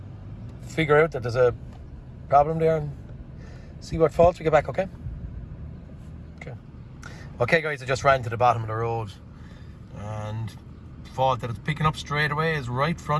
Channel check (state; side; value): identical; both; correlation 1.00